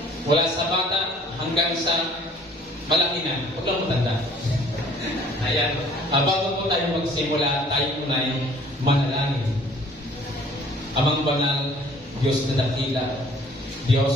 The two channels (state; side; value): normal; both; correlation 0.55